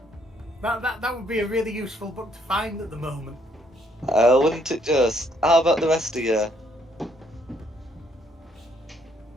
That would be a really useful book to find at the moment. Wouldn't it just? How about the rest of you?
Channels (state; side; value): normal; both; correlation 0.68